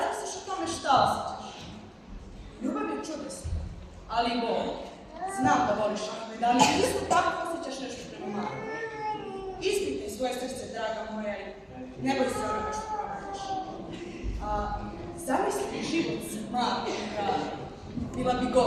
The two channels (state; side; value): identical; both; correlation 1.00